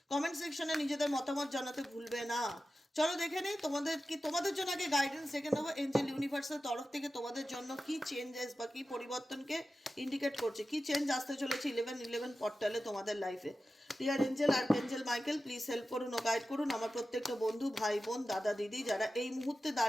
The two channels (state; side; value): normal; both; correlation 0.93